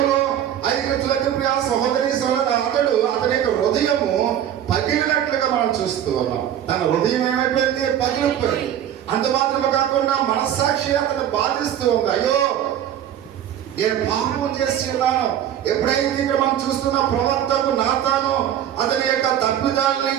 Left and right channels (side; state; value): left; quieter; 10.5 dB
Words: ప్రియ సహోదరి సహోదరు అతని యొక్క హృదయము పగిలినట్లుగా మనం చూస్తూ ఉన్నాం. తన హృదయం ఏమైపోయింది, పగిలిపోయింది. అంత మాత్రమే కాకుండా మనస్సాక్షి అతను బాధిస్తూ ఉంది. అయ్యో నేను పాపం చేసి ఉన్నాను. ఎప్పుడైతే ఇక్కడ మనం చూస్తున్న ప్రవక్తకు నాతాను అతని యొక్క తప్పిదాలని